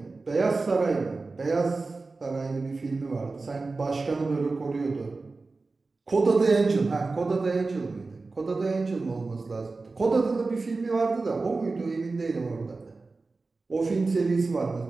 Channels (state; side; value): quieter; left; 3.7 dB